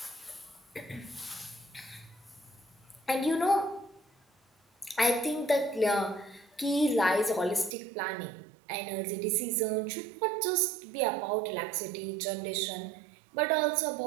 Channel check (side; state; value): left; drops out; at 7.8 s